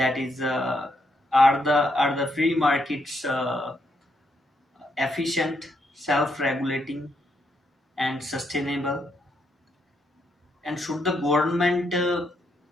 is, are the free markets efficient, self-regulating, and sustainable? And should the government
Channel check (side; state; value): both; normal; correlation 0.77